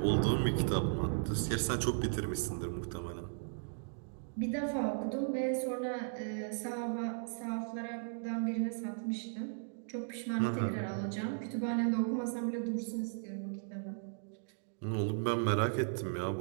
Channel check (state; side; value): silent; left; digital silence